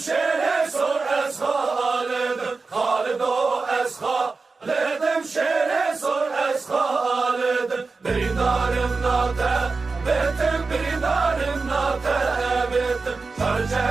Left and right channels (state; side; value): quieter; left; 4.1 dB